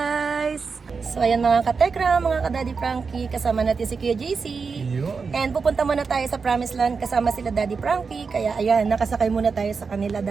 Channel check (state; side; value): quieter; left; 5.1 dB